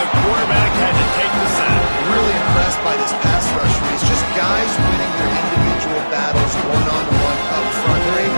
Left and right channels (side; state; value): both; inverted; correlation -1.00